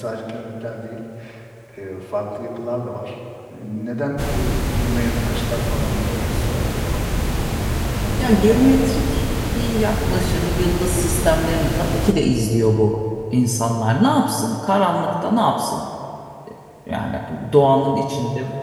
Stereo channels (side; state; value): both; identical; correlation 1.00